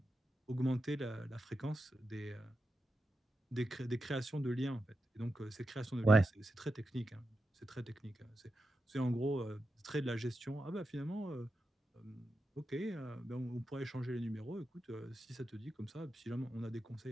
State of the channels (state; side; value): normal; both; correlation 0.89